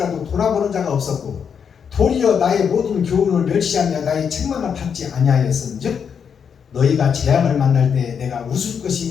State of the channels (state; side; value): quieter; right; 7.1 dB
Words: 돌아보는 자가 없었고 도리어 나의 모든 교훈을 멸시하며 나의 책망을 받지 아니하였은즉 너희가 재앙을 만날 때 내가 웃을